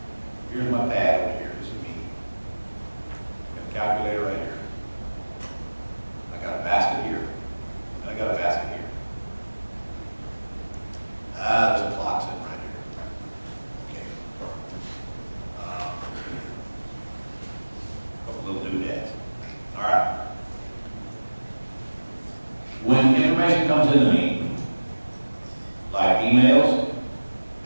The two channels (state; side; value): inverted; both; correlation -1.00